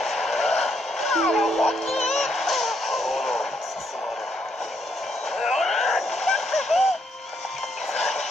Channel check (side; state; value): both; normal; correlation 0.75